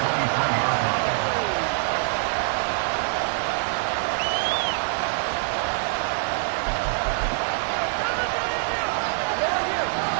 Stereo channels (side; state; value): left; silent; digital silence